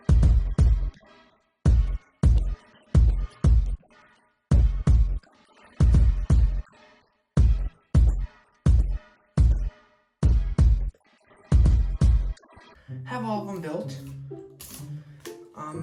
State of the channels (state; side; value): identical; both; correlation 1.00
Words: Have all of them built.